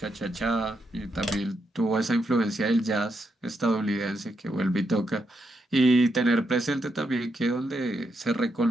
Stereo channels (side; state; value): both; normal; correlation 0.81